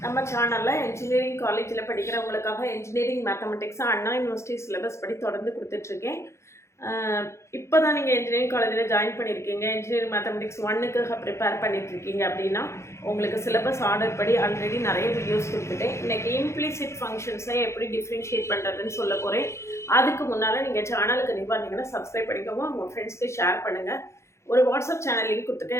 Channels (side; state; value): right; late; 0.13 ms